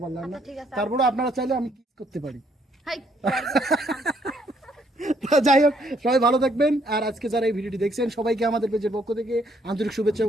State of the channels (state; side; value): normal; both; correlation 0.69